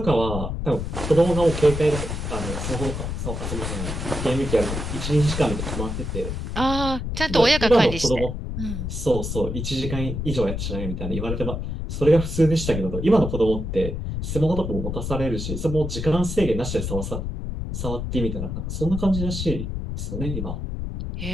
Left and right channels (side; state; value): left; noise; rumble, 4 dB below the sound